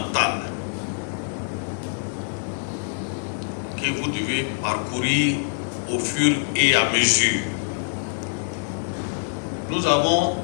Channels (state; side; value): silent; right; digital silence